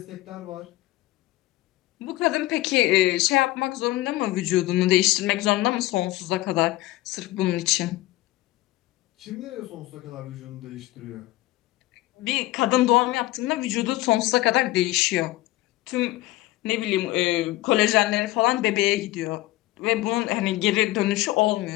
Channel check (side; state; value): right; quieter; 17.7 dB